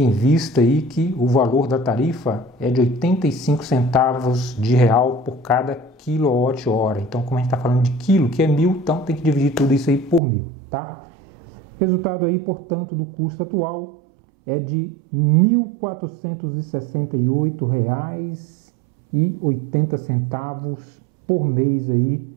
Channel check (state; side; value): drops out; left; at 10.2 s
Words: vista aí que o valor da tarifa é de 85 centavos de real por cada quilowatt-hora. Então, como a gente está falando de quilo, que é 1.000, então tem que dividir tudo isso aí por 1.000, tá? Resultado aí, portanto, do custo atual é de R$ 1.468,80 por mês aí,